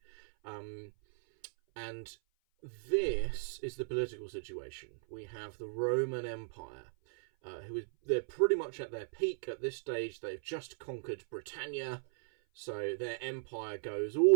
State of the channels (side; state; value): left; silent; 53 dB below the other